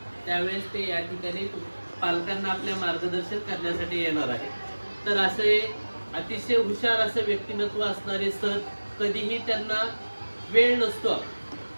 त्यावेळेस ते या ठिकाणी पालकांना आपल्या मार्गदर्शन करण्यासाठी येणार आहे. तर असे अतिशय हुशार असं व्यक्तिमत्व असणारे सर, कधीही त्यांना वेळ नसतो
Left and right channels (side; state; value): both; inverted; correlation -1.00